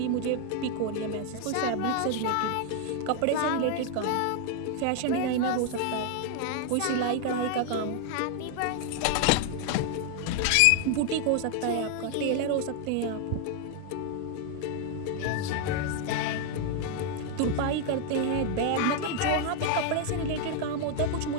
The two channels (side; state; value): both; different; correlation 0.00